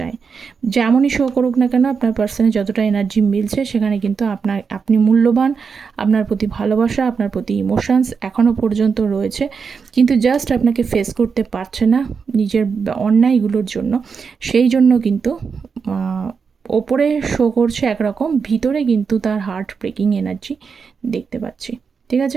যেমনই শো করুক না কেন, আপনার পার্সনে যতটা এনার্জি মিলছে সেখানে কিন্তু আপনি মূল্যবান, আপনার প্রতি ভালোবাসা, আপনার প্রতি ইমোশনস এখনও পর্যন্ত রয়েছে, কিন্তু জাস্ট আপনাকে ফেস করতে পারছে না নিজের অন্যায়গুলোর জন্য। সেই জন্য কিন্তু ওপরে শো করছে একরকম, ভিতরে কিন্তু তার হার্ট ব্রেকিং এনার্জি দেখতে পাচ্ছি, ঠিক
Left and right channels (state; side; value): quieter; left; 5.7 dB